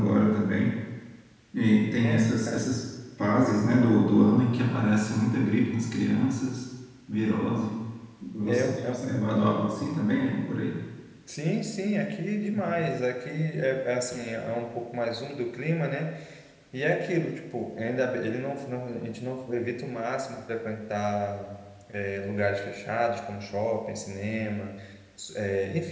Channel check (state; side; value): identical; both; correlation 1.00